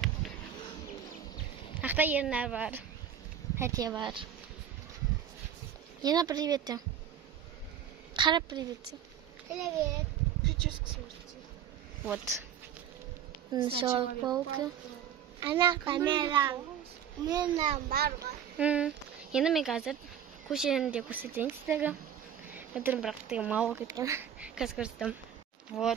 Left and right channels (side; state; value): left; quieter; 9.1 dB